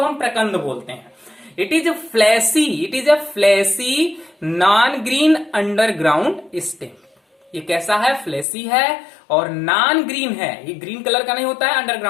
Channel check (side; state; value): right; drops out; at 8.5 s